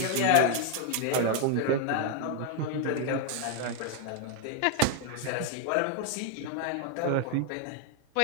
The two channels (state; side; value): different; both; correlation 0.01